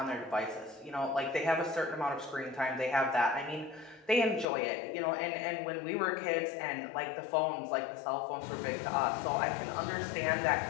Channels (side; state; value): right; drops out; at 4.5 s